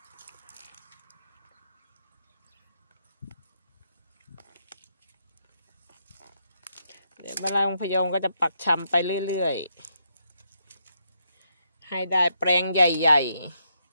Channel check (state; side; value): inverted; both; correlation -0.78